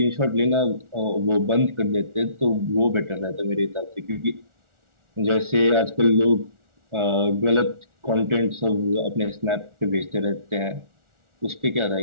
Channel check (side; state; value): left; late; 1.4 ms